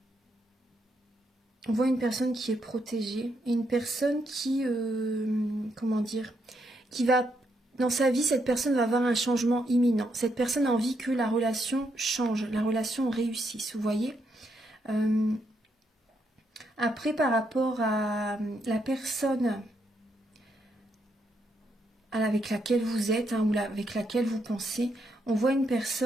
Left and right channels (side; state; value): both; normal; correlation 0.78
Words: voit une personne qui est protégée et une personne qui, comment dire, qui va, dans sa vie, cette personne va avoir un changement imminent. Cette personne a envie que la relation change, la relation réussisse, vous voyez. Après, par rapport à la personne avec laquelle vous êtes ou avec laquelle vous pensez. On voit une